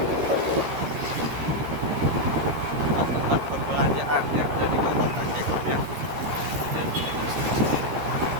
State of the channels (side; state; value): left; late; 13 ms